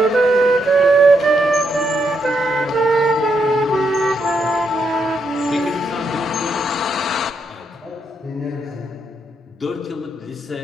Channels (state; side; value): normal; both; correlation 0.79